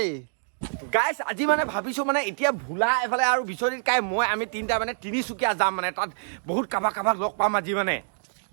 গাইছ। আজি মানে ভাবিছো মানে এতিয়া ভোলা এফালে আৰু বিচনিকাই মই আমি তিনিটা মানে তিনিচুকীয়া যাম, মানে তাত বহুত কাবাক লগ পাম আজি মানে।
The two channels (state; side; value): silent; left; digital silence